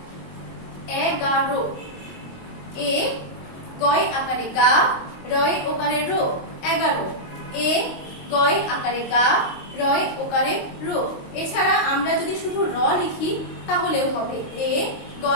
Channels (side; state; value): right; late; 22 ms